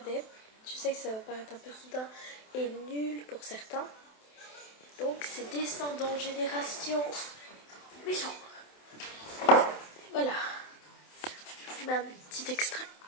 Je sais que ça va paraître un peu soudain et nul pour certains. Donc c'est Descendants Génération Méchant. Voilà, je vous mets un petit extrait.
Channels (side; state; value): right; late; 27 ms